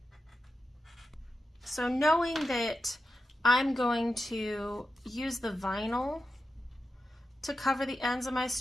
So knowing that I'm going to use the vinyl to cover the ends of my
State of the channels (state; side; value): normal; both; correlation 0.90